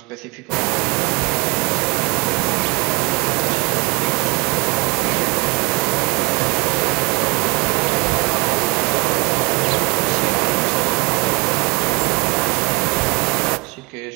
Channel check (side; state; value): left; quieter; 27.6 dB